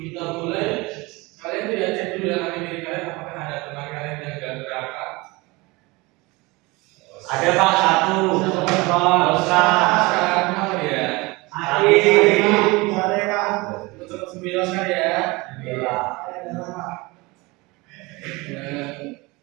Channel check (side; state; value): left; quieter; 23.8 dB